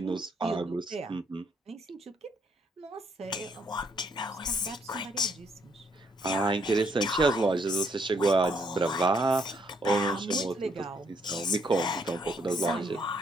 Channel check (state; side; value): normal; both; correlation 0.70